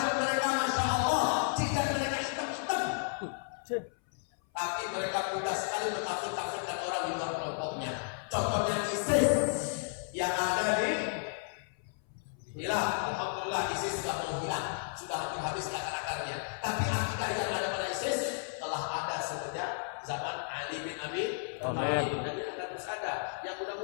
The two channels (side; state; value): right; silent; 56 dB below the other